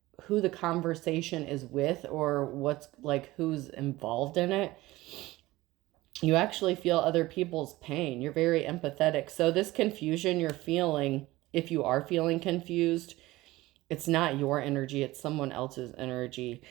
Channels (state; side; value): quieter; left; 18.6 dB